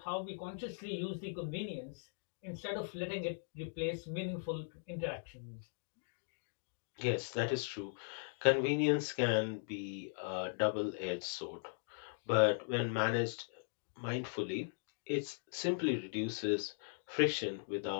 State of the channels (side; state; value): right; silent; digital silence